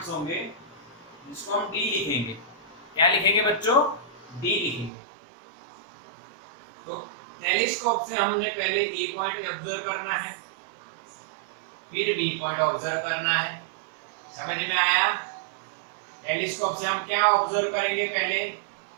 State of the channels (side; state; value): left; drops out; at 4.9 s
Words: होंगे, जिसको हम डी लिखेंगे। क्या लिखेंगे बच्चों? डी लिखेंगे। तो टेलीस्कोप से हमने पहले ए पॉइंट ऑब्जर्व करना है, फिर बी पॉइंट ऑब्जर्व करना है। समझ में आया? टेलीस्कोप से हम क्या ऑब्जर्व करेंगे? पहले